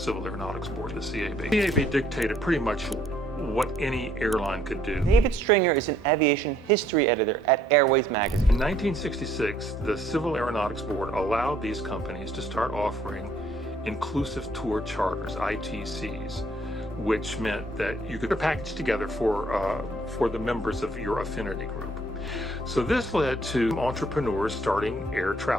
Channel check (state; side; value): normal; both; correlation 0.64